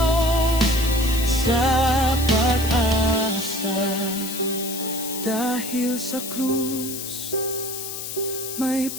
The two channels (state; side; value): noise; left; hiss, 7 dB below the sound